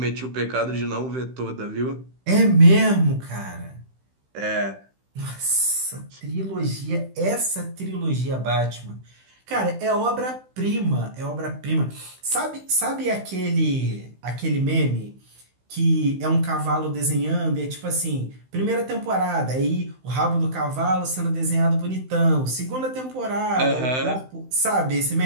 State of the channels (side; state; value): left; late; 16 ms